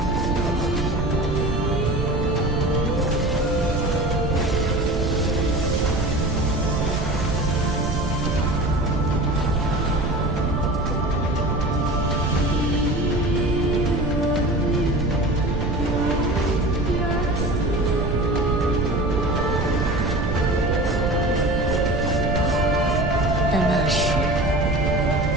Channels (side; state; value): right; noise; rumble, 2 dB below the sound